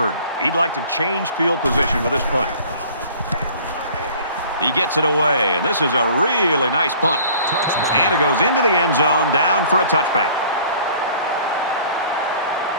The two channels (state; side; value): inverted; both; correlation -0.50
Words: he'd like to change field position with this punt. He gets it away, and this is a really nice punt. Touchback. And it goes into the end zone, down for a touchback.